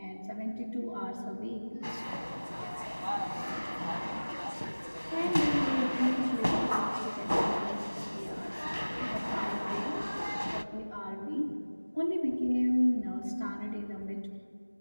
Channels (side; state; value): both; inverted; correlation -1.00